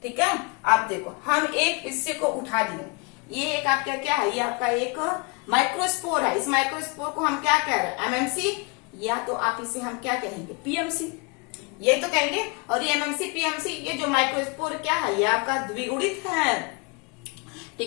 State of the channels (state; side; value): quieter; right; 31.4 dB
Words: ठीक है, आप देखो हम एक हिस्से को उठा लिए। ये एक आपका क्या है, ये आपका एक माइक्रोस्पोर है। इस माइक्रोस्पोर को हम क्या कह रहे हैं, एमएमसी, या तो आप इसे हम क्या कहेंगे, पीएमसी, ये तो कहेंगे। और ये एमएमसी पीएमसी, ये जो माइक्रोस्पोर क्या है, ये आपका द्विगुणित है।